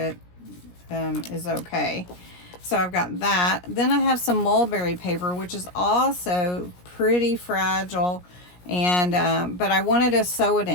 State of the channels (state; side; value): late; right; 17 ms